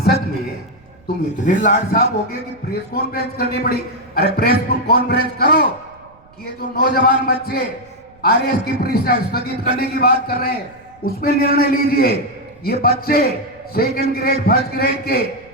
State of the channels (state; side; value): noise; right; rumble, 29 dB below the sound